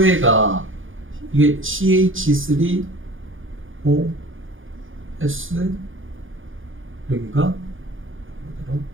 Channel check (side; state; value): left; late; 0.58 ms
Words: 이게 CH3OS 여기가